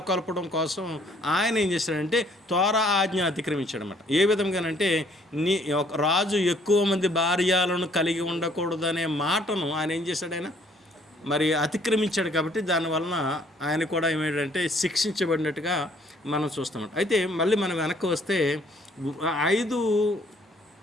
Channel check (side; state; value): both; normal; correlation 0.62